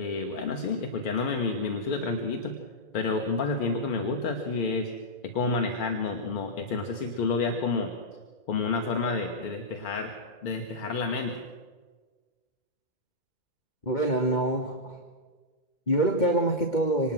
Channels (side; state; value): right; late; 2.3 ms